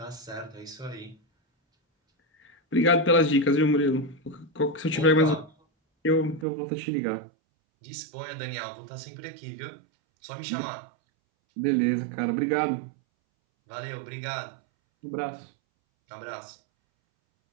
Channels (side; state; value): left; drops out; at 6.5 s